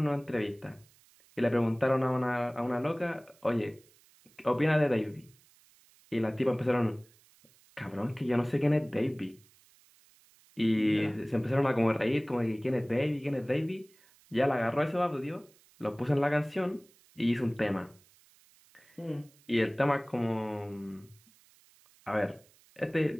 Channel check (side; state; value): right; noise; hiss, 29 dB below the sound